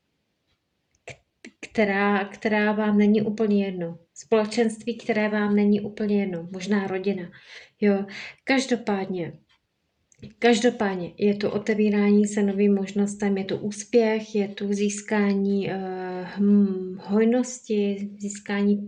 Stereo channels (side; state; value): both; identical; correlation 1.00